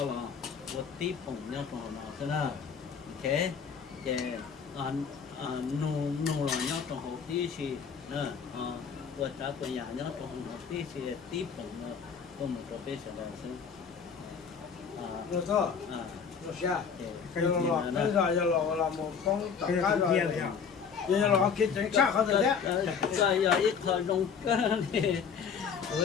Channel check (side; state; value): right; quieter; 6.5 dB